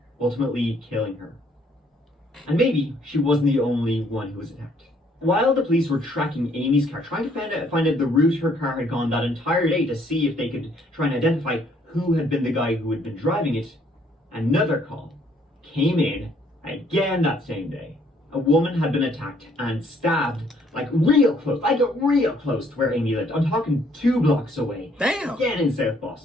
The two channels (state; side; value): normal; both; correlation 0.65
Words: ultimately killing her. And maybe she wasn't the only one who was attacked. While the police were tracking Amy's car, trying to find out the route her car had gone that entire day to see if they could try and identify who had been the guy who had been driving it, another call came in again that same day. A woman had been attacked and stabbed real close to where Amy lived. I'm talking 2 blocks away. Damn. Again in South